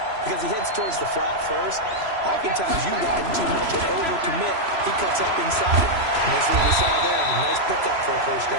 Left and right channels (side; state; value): left; late; 3.0 ms